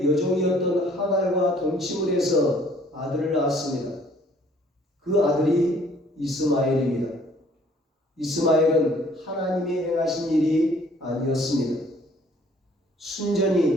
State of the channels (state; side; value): normal; both; correlation 0.58